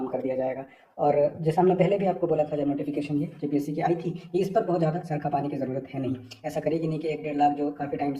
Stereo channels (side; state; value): both; identical; correlation 1.00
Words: कर दिया जाएगा। और जैसा हमने पहले भी आपको बोला था जब नोटिफिकेशन ये जेपीएससी की आई थी कि इस पर बहुत ज़्यादा सर खपाने की ज़रूरत है नहीं। ऐसा करेगी नहीं कि 1-1.5 लाख जो काफ़ी टाइम